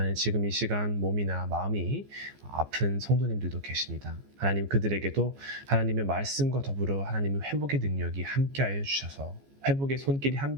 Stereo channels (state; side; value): late; left; 14 ms